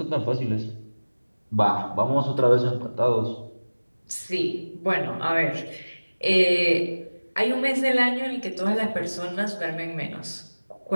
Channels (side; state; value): both; inverted; correlation -1.00